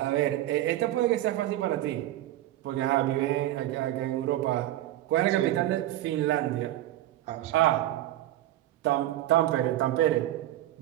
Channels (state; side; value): quieter; left; 14.4 dB